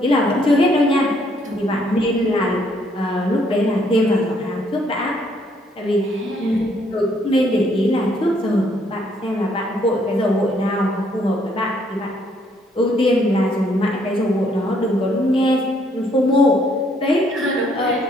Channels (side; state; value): both; normal; correlation 0.68